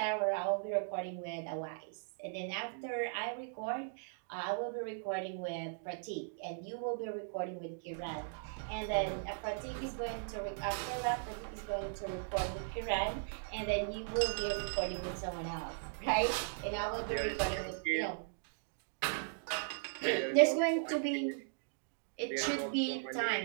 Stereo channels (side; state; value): left; silent; digital silence